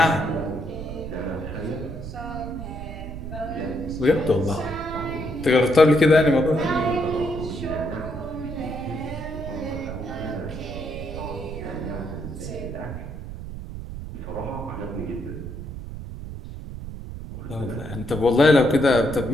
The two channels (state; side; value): noise; right; rumble, 9 dB below the sound